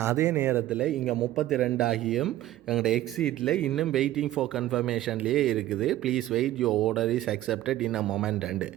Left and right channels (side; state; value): left; quieter; 14.4 dB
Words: அதே நேரத்தில் இங்கே 32 ஆகியும் எங்களோட எக்ஸிட்டில் இன்னும் வெயிட்டிங் ஃபார் கன்ஃபர்மேஷன்லேயே இருக்குது. Please wait, your order is accepted in a moment and.